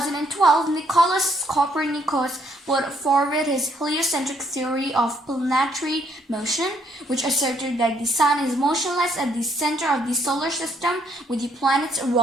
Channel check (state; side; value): normal; both; correlation 0.69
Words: Nicolaus Copernicus put forward his heliocentric theory of planetary motion, which asserted that the sun is motionless at the center of the solar system, with the planets